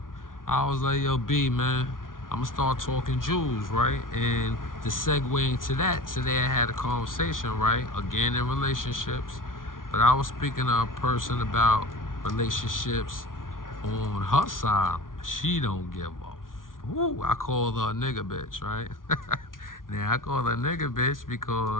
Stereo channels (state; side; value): late; right; 0.89 ms